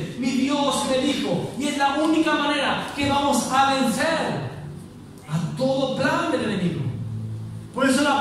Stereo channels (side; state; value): both; identical; correlation 1.00